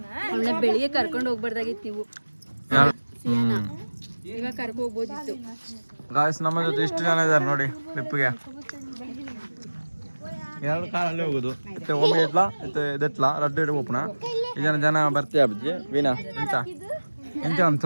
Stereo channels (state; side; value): inverted; both; correlation -1.00